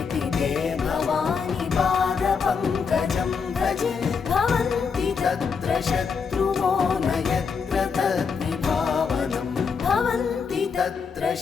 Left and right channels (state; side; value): quieter; right; 5.8 dB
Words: ते भवानि पादपङ्कजं भजे भवन्ति तत्र शत्रुवो न यत्र तद्विभावनं भवन्ति तत्र